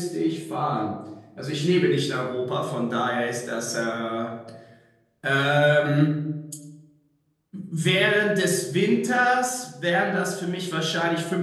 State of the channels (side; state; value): both; identical; correlation 1.00